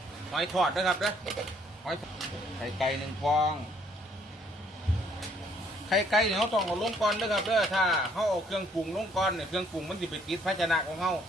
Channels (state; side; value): normal; both; correlation 0.64